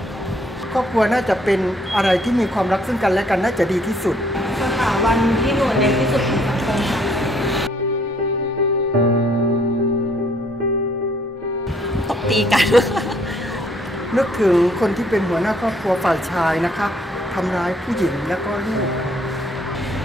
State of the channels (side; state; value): both; normal; correlation 0.65